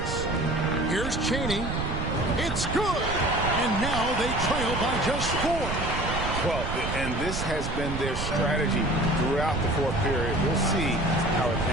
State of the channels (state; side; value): noise; right; rumble, 4 dB below the sound